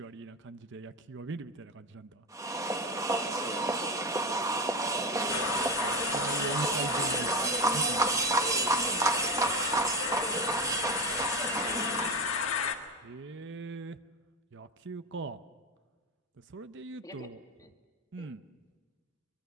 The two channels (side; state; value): both; normal; correlation 0.18